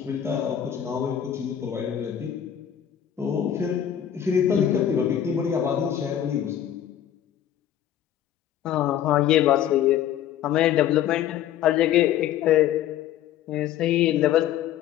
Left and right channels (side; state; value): right; quieter; 10.5 dB